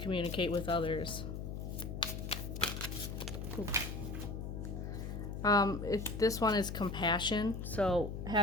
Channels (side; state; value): left; noise; hum, 6 dB below the sound